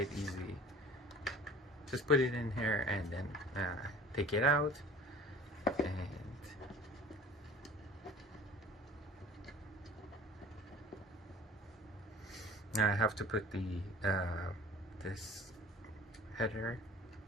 easy. Just put it in here and then take it out, and now I have to put the this header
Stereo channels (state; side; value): normal; both; correlation 0.46